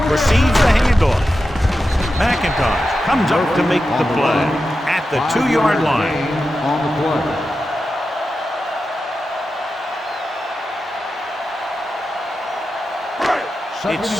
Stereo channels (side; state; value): both; normal; correlation 0.91